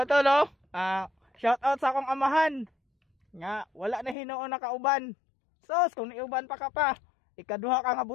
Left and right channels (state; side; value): drops out; right; at 4.2 s